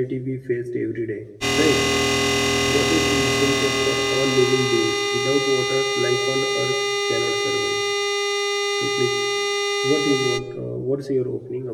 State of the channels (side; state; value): both; identical; correlation 1.00